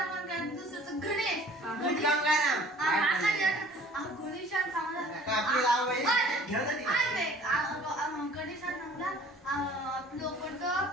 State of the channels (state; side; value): normal; both; correlation 0.50